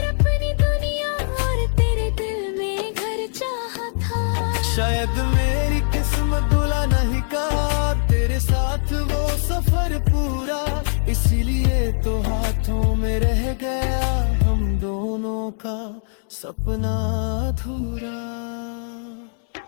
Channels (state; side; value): silent; right; digital silence